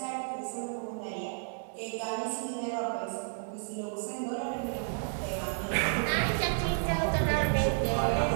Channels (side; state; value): left; silent; digital silence